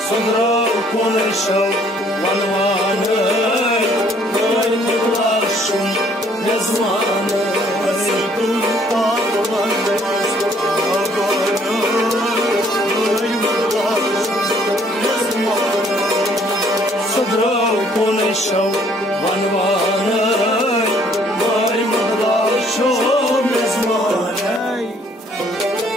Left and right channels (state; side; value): normal; both; correlation 0.62